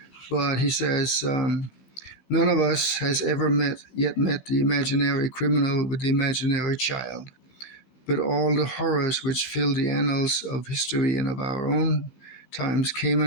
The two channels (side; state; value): right; late; 15 ms